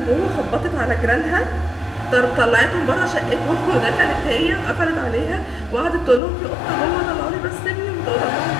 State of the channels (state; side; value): drops out; right; at 6.2 s